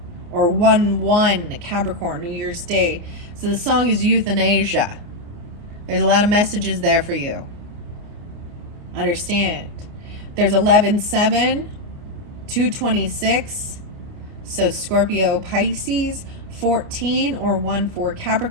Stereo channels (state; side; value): late; left; 29 ms